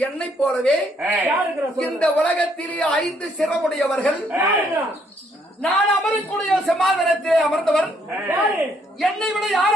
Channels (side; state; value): both; normal; correlation 0.70